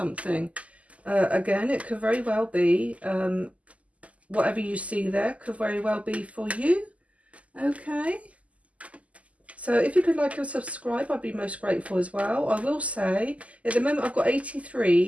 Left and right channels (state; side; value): late; left; 0.068 ms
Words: Again, it could very well be whatever you see there could very well be for you. Okay, so if you could like and subscribe, I'd be most grateful as well. I will say at the moment I've got